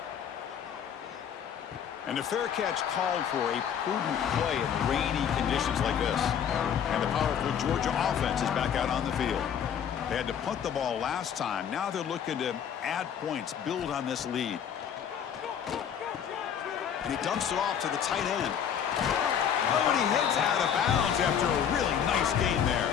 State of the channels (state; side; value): quieter; right; 8.4 dB